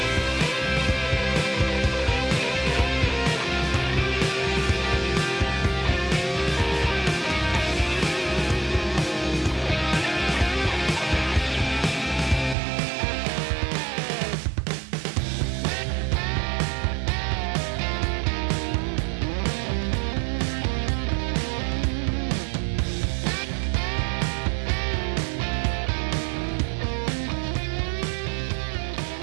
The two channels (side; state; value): left; drops out; at 12.6 s